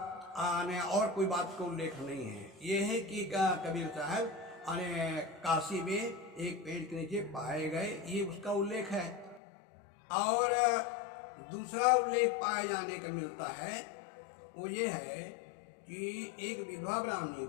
कोई बात का उल्लेख नहीं है। ये है कि कबीर साहब काशी में एक पेड़ के नीचे पाए गए, ये उसका उल्लेख है। और दूसरा उल्लेख पाए जाने का मिलता है वो ये है कि एक विधवा ब्राह्मणी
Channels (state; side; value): drops out; right; at 9.4 s